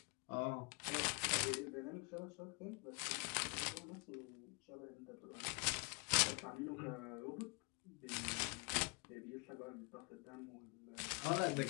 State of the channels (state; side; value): quieter; right; 33.2 dB